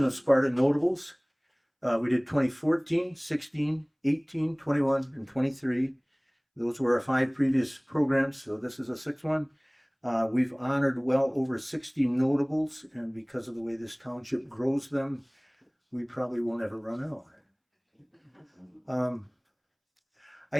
of Sparta Notables. We did 2014, 16, 18, 21, and 23. Those were our 5 previous programs, so this is a 6th one. We've honored well over 60 notables, and because of the way this township grows them, we probably won't ever run out. I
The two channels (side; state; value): both; identical; correlation 1.00